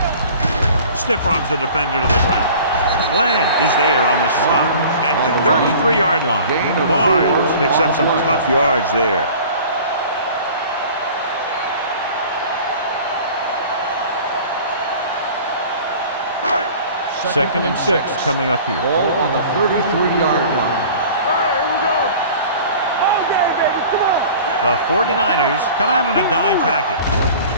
Stiff arms the defender to the ground. Glenn is there on the stop at the 33-yard line. Barnes picks up some tough yards there. Second and 6 coming up here. Ball on the 33-yard line. Here we go. All day, baby. Come on. The 49ers come out in a dime package.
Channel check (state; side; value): inverted; both; correlation -0.44